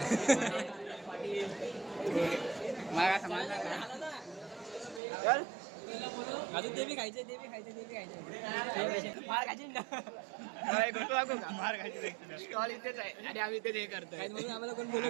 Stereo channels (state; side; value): drops out; left; at 5.0 s